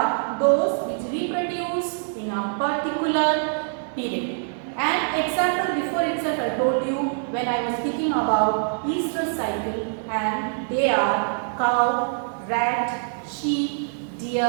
those which reproduce in a particular period. And example, before itself I told you when I was speaking about estrous cycle, and they are cow, rat, sheep,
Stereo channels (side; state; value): left; silent; 62 dB below the other